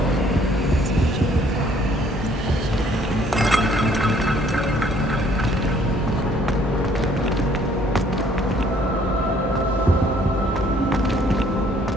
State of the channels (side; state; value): both; normal; correlation 0.61